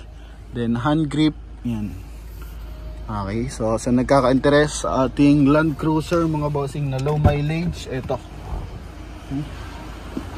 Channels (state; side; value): identical; both; correlation 1.00